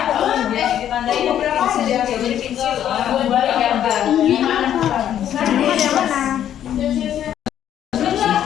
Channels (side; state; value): right; quieter; 10.5 dB